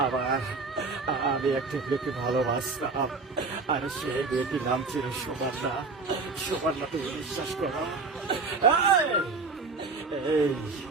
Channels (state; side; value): quieter; left; 4.1 dB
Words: আমার আমি একটা মেয়েকে ভালোবাসতাম, আর সেই মেয়েটির নাম ছিল সুবর্ণা। সুবর্ণা তুমি বিশ্বাস করো, এই